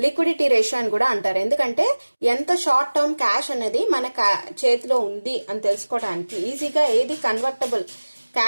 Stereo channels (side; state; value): both; inverted; correlation -1.00